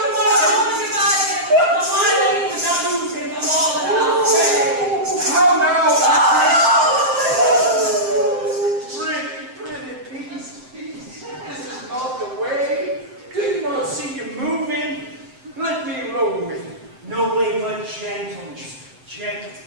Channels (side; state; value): left; late; 7.8 ms